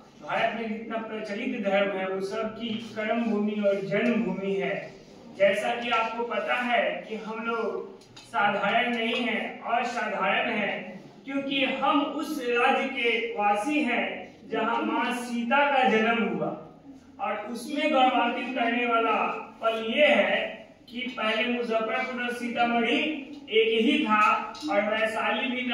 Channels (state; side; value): identical; both; correlation 1.00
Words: भारत में जितना प्रचलित धर्म है वो सबकी कर्म भूमि और जन्म भूमि है। जैसा कि आपको पता है कि हम लोग साधारण नहीं हैं, असाधारण हैं, क्योंकि हम उस राज्य के वासी हैं जहां मां सीता का जन्म हुआ। और उसमें गौरवान्वित करने वाला पल ये है कि पहले मुजफ्फरपुर और सीतामढ़ी एक ही था और वैशाली भी